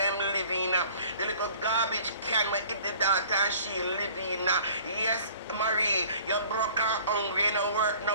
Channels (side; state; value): both; inverted; correlation -0.51